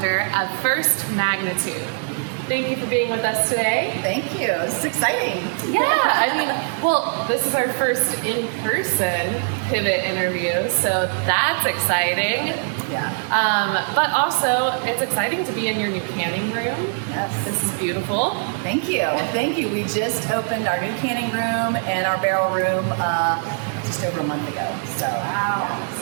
of First Magnitude. Thank you for being with us today. Thank you. This is exciting. Yeah, well, this is our first in-person pivot interview, so that's exciting. Yeah. But also, it's exciting to be in your new canning room. Yes. This is beautiful. Thank you. Thank you. We just opened our new canning room and our barrel room just over a month ago. So, wow.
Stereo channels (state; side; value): silent; left; 64 dB below the other